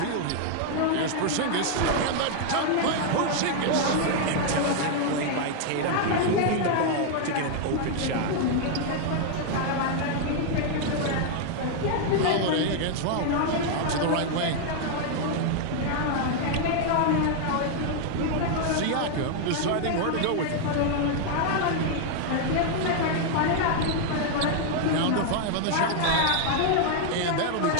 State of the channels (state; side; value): different; both; correlation 0.00